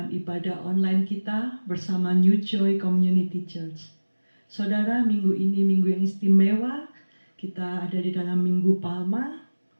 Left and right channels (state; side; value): inverted; both; correlation -1.00